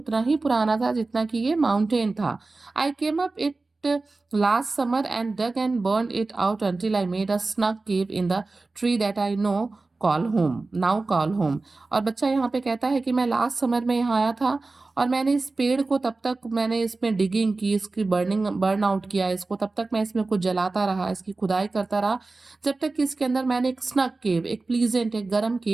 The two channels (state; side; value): quieter; left; 3.5 dB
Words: ही पुराना था जितना कि ये माउंटेन था। I came up it last summer and dug and burned it out until I made a snug cave in the tree that I now call home। और बच्चा यहाँ पे कहता है कि मैं लास्ट समर में यहाँ आया था और मैंने इस पेड़ को, तब तक मैंने इसमें डिगिंग की, इसकी बर्न आउट किया इसको, तब तक मैं इसमें कुछ जलाता रहा, इसकी खुदाई करता रहा, जब तक कि इसके अंदर मैंने एक स्नग केव, एक प्लीजेंट, एक गर्म